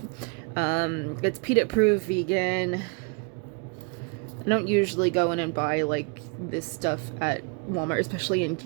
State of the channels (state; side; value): quieter; left; 33.4 dB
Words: It's peanut proof, vegan. I don't usually go in and buy like this stuff at Walmart, especially in